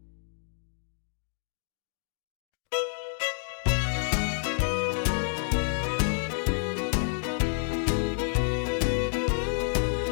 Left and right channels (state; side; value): silent; right; digital silence